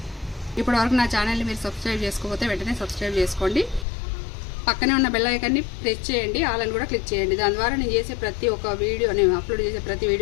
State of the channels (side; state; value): right; drops out; at 3.9 s